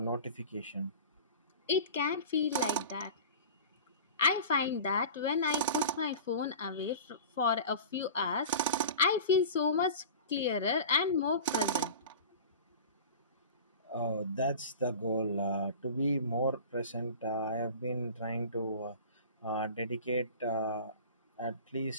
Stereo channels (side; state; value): both; inverted; correlation -0.36